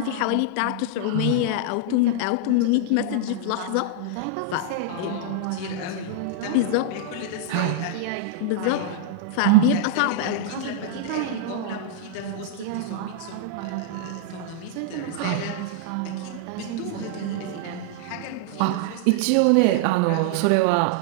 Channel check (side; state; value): both; different; correlation -0.01